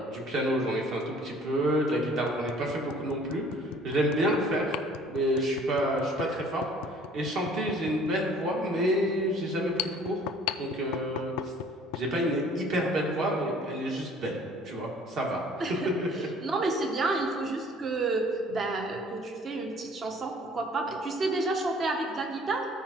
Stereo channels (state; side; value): normal; both; correlation 0.53